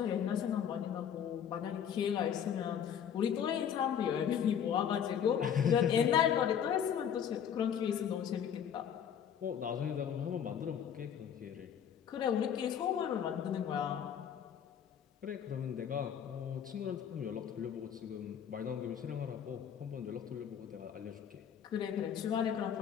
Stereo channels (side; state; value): right; quieter; 8.5 dB